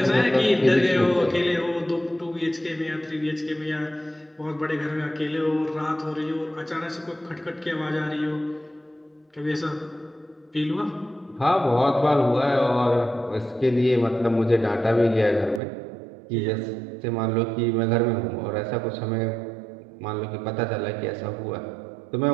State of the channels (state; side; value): drops out; left; at 15.6 s